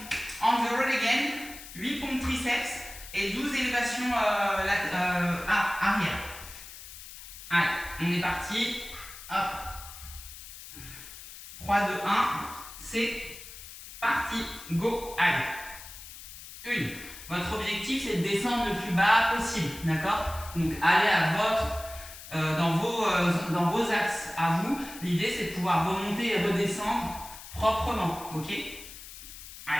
on the road again, 8 pompes triceps et 12 élévations arrière. Allez, on est parti. Hop. 3, 2, 1, c'est parti. Go. Allez. Votre objectif c'est de descendre le plus bas possible. D'accord? Donc allez à dans vos axes à vous. L'idée c'est de pouvoir remonter et redescendre proprement. Ok?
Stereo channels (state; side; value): noise; left; hiss, 14 dB below the sound